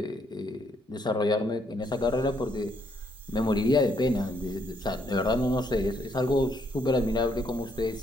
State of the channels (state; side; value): normal; both; correlation 0.72